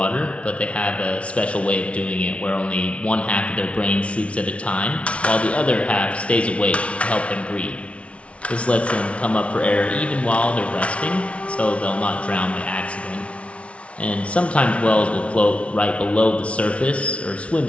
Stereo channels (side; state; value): right; late; 0.062 ms